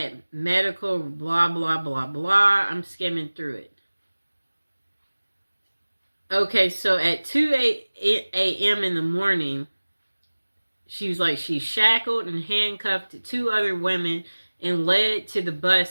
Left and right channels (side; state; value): both; inverted; correlation -1.00